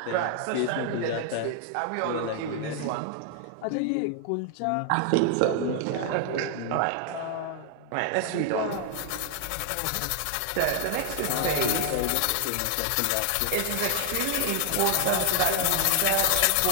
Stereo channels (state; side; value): different; both; correlation 0.00